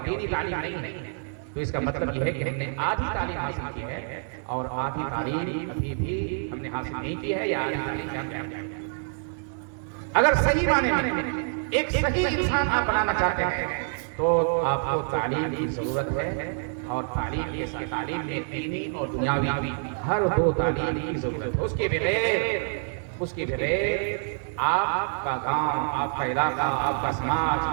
دینی تعلیم نہیں ہے, تو اس کا مطلب یہ ہے کہ ہم نے آدھی تعلیم حاصل کی ہے, اور آدھی تعلیم ابھی بھی ہم نے حاصل نہیں کی ہے, یا آدھی تعلیم یافتہ ہے. اگر صحیح معنی میں ایک صحیح انسان آپ بنانا چاہتے ہیں تو آپ کو تعلیم کی ضرورت ہے, اور تعلیم اس کی تعلیم میں دینی اور دنیاوی ہر دو تعلیم کی ضرورت ہے. اس کے بغیر آپ کا گاؤں, آپ کا علاقہ, آپ کا سماج,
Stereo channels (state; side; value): silent; left; 60 dB below the other